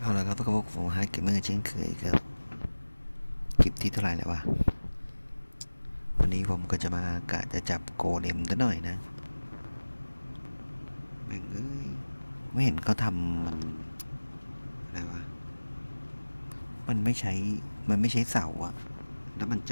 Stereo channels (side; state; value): both; inverted; correlation -1.00